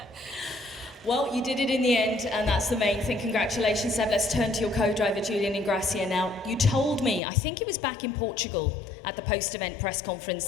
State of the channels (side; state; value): right; drops out; at 7.2 s